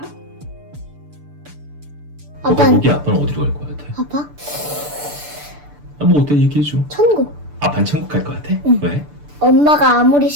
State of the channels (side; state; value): left; late; 6.8 ms